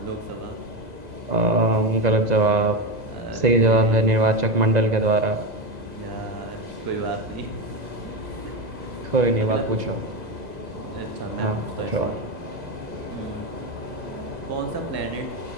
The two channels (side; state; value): left; late; 2.0 ms